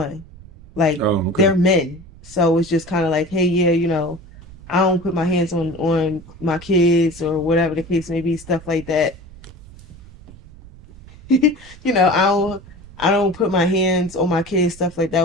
Like, they're men. So it's just kind of like, hey, yeah, I don't put my hands on my kids or whatever the case may be, stuff like that. I I don't put my hands on my kids, stuff like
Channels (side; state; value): right; noise; rumble, 20 dB below the sound